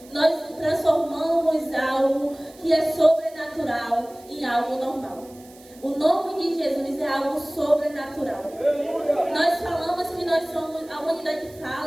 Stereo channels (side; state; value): right; noise; hiss, 24 dB below the sound